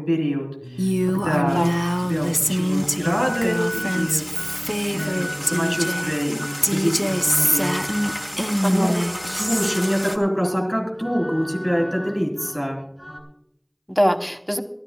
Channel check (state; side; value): identical; both; correlation 1.00